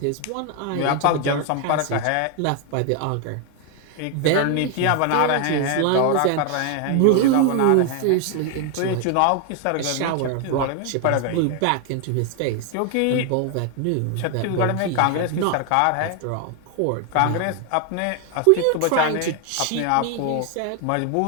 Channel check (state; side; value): different; both; correlation 0.00